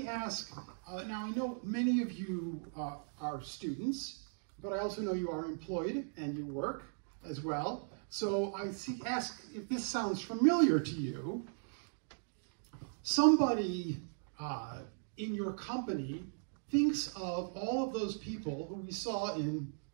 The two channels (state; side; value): silent; left; digital silence